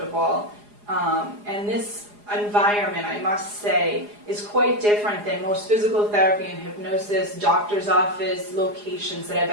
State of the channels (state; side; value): late; left; 4.8 ms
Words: and this environment, I must say, is quite different than most physical therapy and hypnosis, doctor's office locations that I've